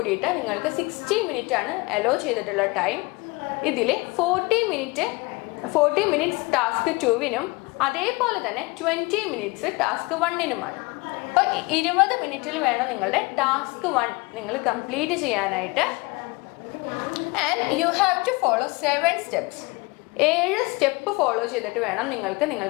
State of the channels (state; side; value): quieter; right; 25.0 dB